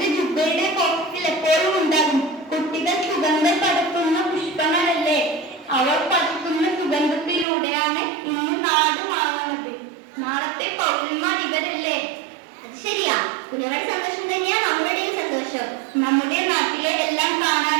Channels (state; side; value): drops out; left; at 7.5 s